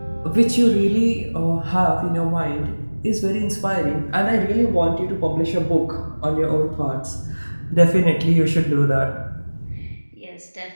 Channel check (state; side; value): inverted; both; correlation -1.00